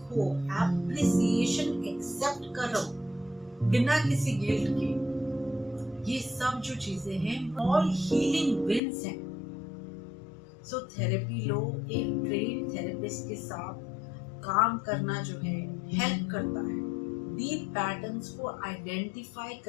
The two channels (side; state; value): right; drops out; at 8.8 s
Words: एप्रिसिएशन एक्सेप्ट करो बिना किसी गिल्ट के। ये सब जो चीजें हैं ऑल हीलिंग विंस हैं। सो थेरेपी लो, एक ट्रेन थेरेपिस्ट के साथ काम करना जो है हेल्प करता है। डीप पैटर्न्स को आइडेंटिफाई